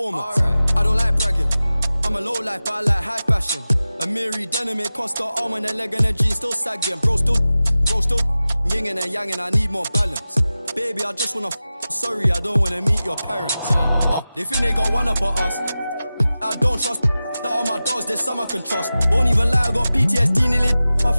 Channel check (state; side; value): inverted; both; correlation -0.95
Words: Alright, I don't like bragging, I'm a low life, but I like high fashion. A Miri denim, it cost the arm and a leg and a G, still sagging. Bro still, yin and yang, I need more balance. Baby, I just wanna sorry, I don't wanna meet your parents. They think they got one up on us. I don't trust that all my dogs, there's some I can trust. Won't even lie, I got PTSD nearly. My